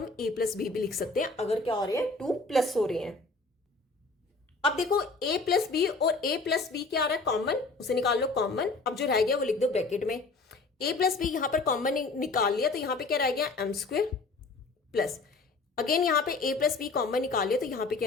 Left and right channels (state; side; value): quieter; right; 3.7 dB